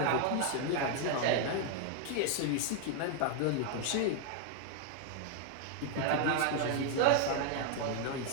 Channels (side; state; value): both; different; correlation 0.00